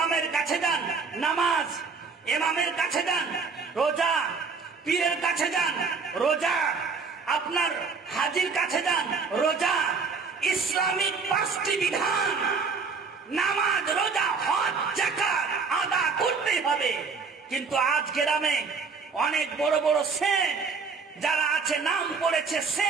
কাছে যান নামাজ, ইমামের কাছে যান রোজা, পীরের কাছে যান রোজা, আপনার হাজির কাছে যান রোজা। ইসলামিক 5টি বিধান নামাজ, রোজা, হজ, যাকাত আদা করতেই হবে। কিন্তু আজ গ্রামে অনেক বড় বড় সেট যারা আছে, নাম পড়েছে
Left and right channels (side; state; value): left; quieter; 5.1 dB